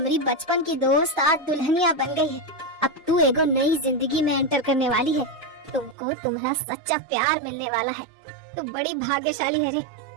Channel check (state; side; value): drops out; left; at 6.0 s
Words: बचपन की दोस्त आज दुल्हनिया बन गई है। अब तू एगो नई जिंदगी में एंटर करने वाली है। तुमको तुम्हारा सच्चा प्यार मिलने वाला है। तू बड़ी भाग्यशाली है रे,